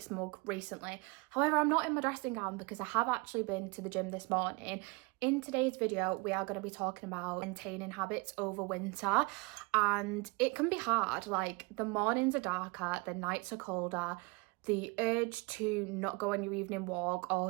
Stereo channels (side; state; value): left; quieter; 27.7 dB